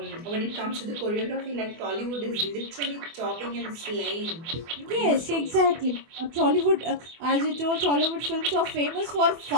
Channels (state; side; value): late; left; 24 ms